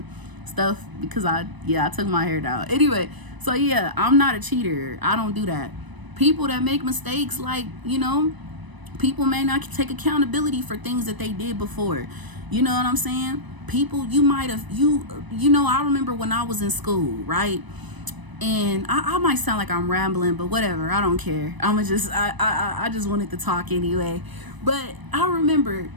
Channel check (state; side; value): late; left; 1.0 ms